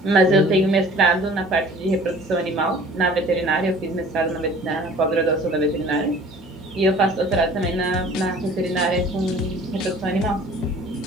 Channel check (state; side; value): normal; both; correlation 0.48